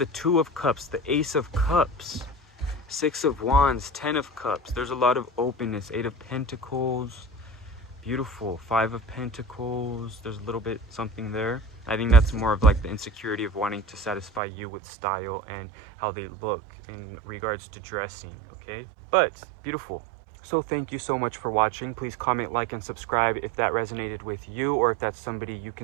Two of Cups, the Ace of Cups, Six of Wands, Ten of Cups. There's a lot of openness. Eight of Pentacles. Beautiful. Five of Pentacles. There's a little bit something there. I think that's more of like the insecurity of wanting to satisfy you with style and how they look in regards to dressing, okay? But beautiful. So thank you so much for watching. Please comment, like, and subscribe if that resonated with you, or if that's somebody you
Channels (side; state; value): left; drops out; at 14.4 s